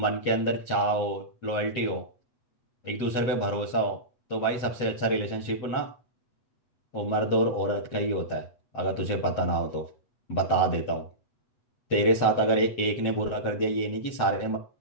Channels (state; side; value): late; right; 8.1 ms